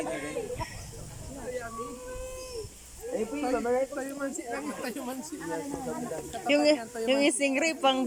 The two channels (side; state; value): both; identical; correlation 1.00